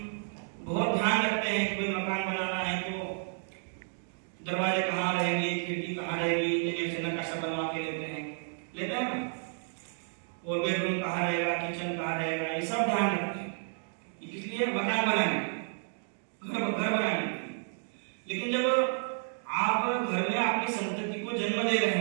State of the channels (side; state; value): left; silent; digital silence